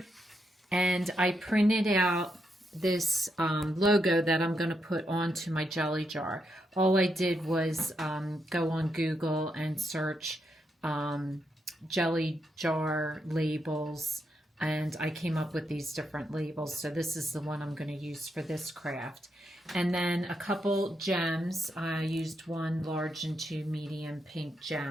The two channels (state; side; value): normal; both; correlation 0.81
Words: and I printed out this logo that I'm going to put onto my jelly jar. All I did was go on Google and search jelly jar labels, and I came up with these different labels. So this is the one I'm going to use for this craft. And then a couple gems. I used one large and two medium pink